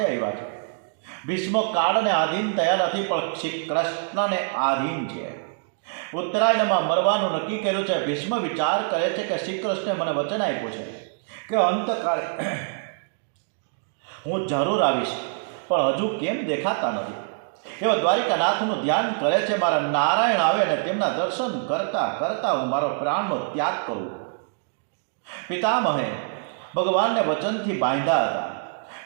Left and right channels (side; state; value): left; silent; digital silence